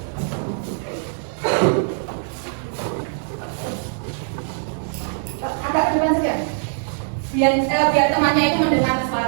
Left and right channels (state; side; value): silent; left; digital silence